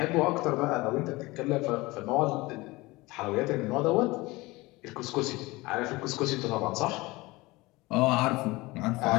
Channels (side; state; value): right; quieter; 21.6 dB